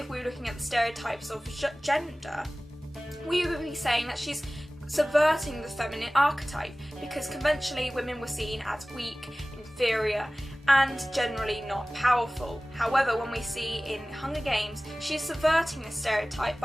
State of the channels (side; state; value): both; normal; correlation 0.98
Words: we're looking at the stereotypes of gender, we would be saying that she's subverting the feminine archetype, because conventionally women were seen as weak, inferior, and generally not powerful. However, when we see in Hunger Games, she's subverting this stereotype